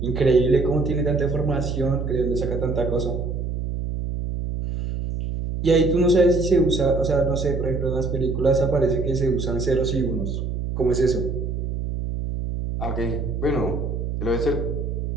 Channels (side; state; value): right; noise; hum, 3 dB below the sound